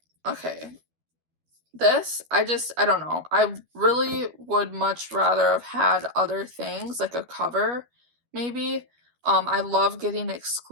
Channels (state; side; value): late; left; 12 ms